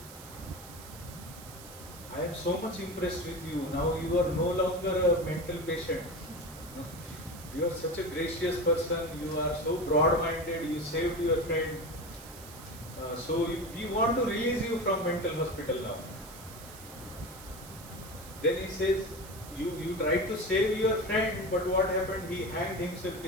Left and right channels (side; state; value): right; noise; hiss, 16 dB below the sound